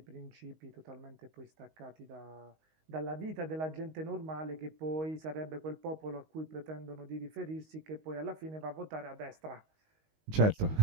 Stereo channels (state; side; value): late; left; 19 ms